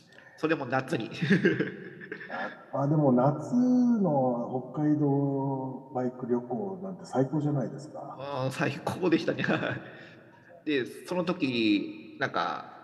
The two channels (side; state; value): both; identical; correlation 1.00